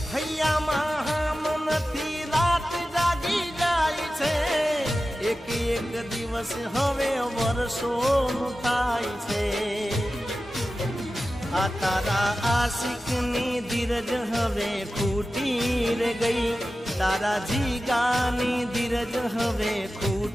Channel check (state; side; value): normal; both; correlation 0.94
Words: હૈયામાં હામ નથી, રાત જાગી જાય છે, એક એક દિવસ હવે વર્ષોનું થાય છે। આ તારા આશિકની ધીરજ હવે ખૂટી રે ગઈ, તારા જીગાની ધીરજ હવે